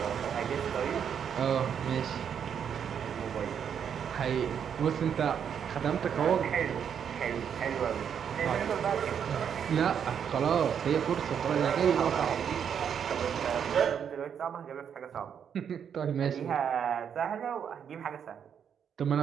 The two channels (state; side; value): quieter; left; 8.0 dB